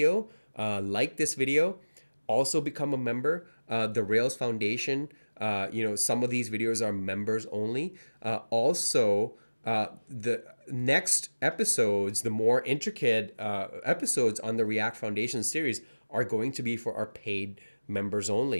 like this video. Also become a member. The Rails Foundation, some of these videos are members only. Also, the next episodes, the more intricate episodes on the React Foundation series are going to be for our paid members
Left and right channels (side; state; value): both; inverted; correlation -1.00